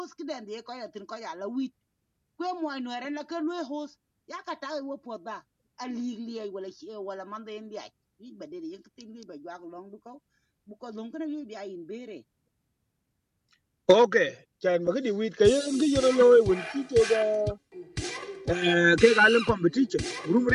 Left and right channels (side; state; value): both; identical; correlation 1.00